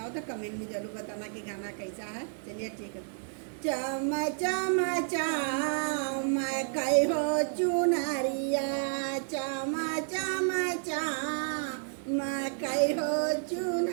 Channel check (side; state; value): left; silent; digital silence